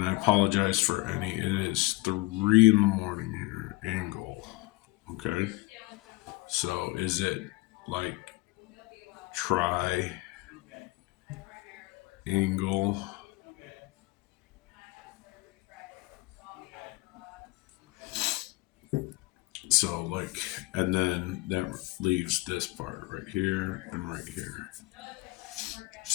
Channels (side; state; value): right; quieter; 21.2 dB